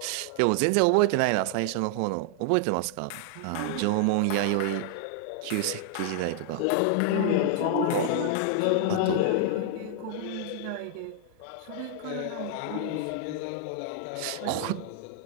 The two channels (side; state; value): both; different; correlation -0.01